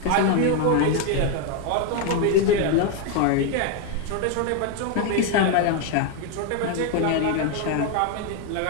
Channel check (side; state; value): both; different; correlation 0.01